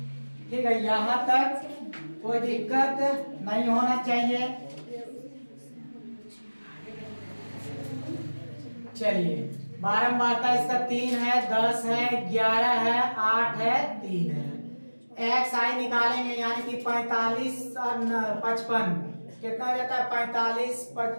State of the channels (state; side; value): inverted; both; correlation -1.00